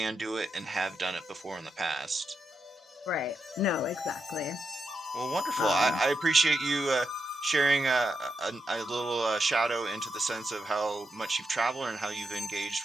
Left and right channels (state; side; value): normal; both; correlation 0.85